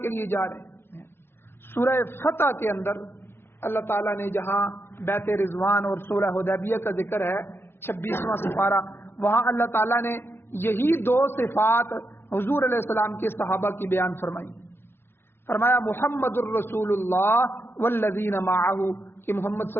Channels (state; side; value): late; right; 0.11 ms